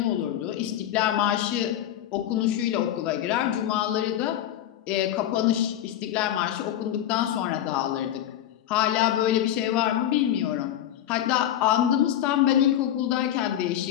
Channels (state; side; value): quieter; right; 11.6 dB